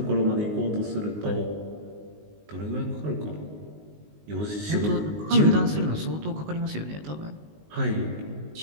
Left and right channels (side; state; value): left; late; 19 ms